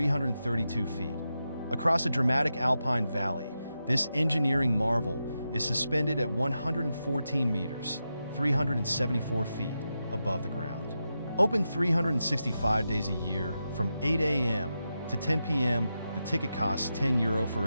feet. Across a dramatic alpine valley, this engineering marvel is suspended at 114 meters, 374 feet above the ground. Open 365 days a year from 8 a.m. to 10 p.m. The ticket costs €10 for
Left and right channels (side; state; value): both; inverted; correlation -0.89